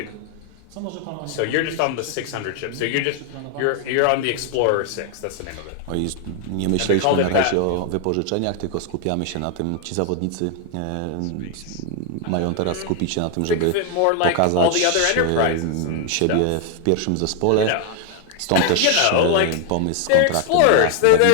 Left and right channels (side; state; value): both; different; correlation 0.00